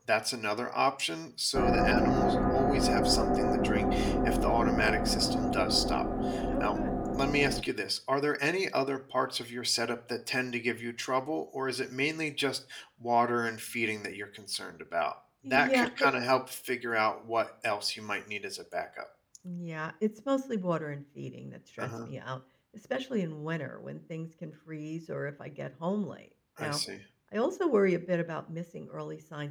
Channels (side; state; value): both; identical; correlation 1.00